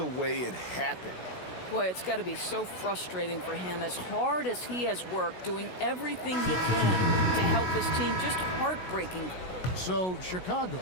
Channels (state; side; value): late; right; 16 ms